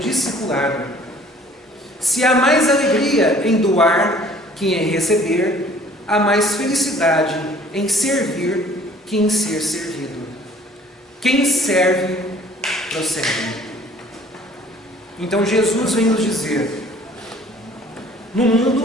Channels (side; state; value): both; normal; correlation 0.54